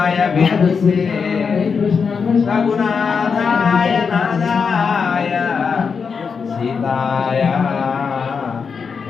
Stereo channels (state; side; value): quieter; right; 5.7 dB